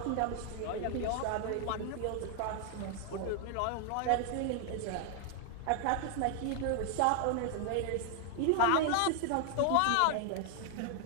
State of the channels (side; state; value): both; different; correlation 0.00